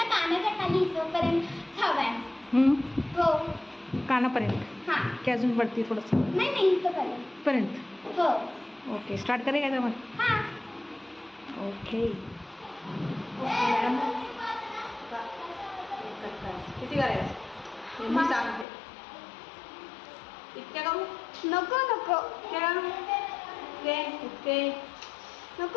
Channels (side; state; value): right; drops out; at 18.7 s